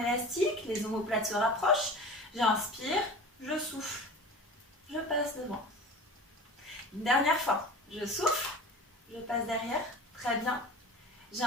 les omoplates se rapprochent. J'inspire, je souffle, je passe devant. Une dernière fois, je souffle, je passe derrière, très bien.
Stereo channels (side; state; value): both; normal; correlation 0.37